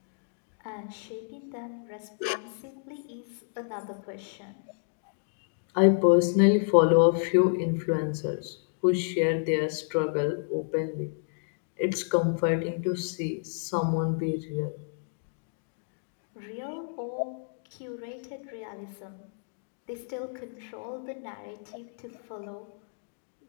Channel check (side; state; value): right; silent; digital silence